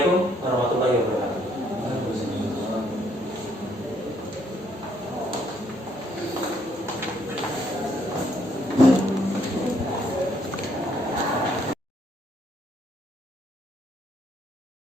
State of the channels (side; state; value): both; normal; correlation 0.69